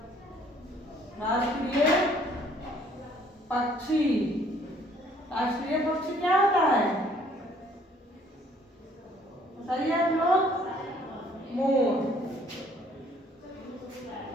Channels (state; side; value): normal; both; correlation 0.61